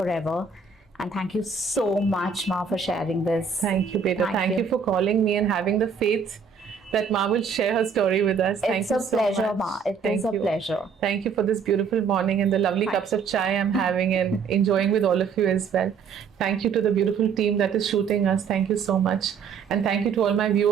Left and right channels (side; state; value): left; quieter; 6.0 dB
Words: And thank you so much, Ma, for sharing this. Thank you, Beta. Thank you for calling me and having the faith that Ma will share her story with us. Thank It's you a so pleasure, much. Ma. It Thank is a you. pleasure. Thank you for this beautiful morning and the lovely Thank cups of chai I'm having and enjoying with all of you as well. Thank you to the beautiful team that is shooting us. Thank you so much. And thank you to all my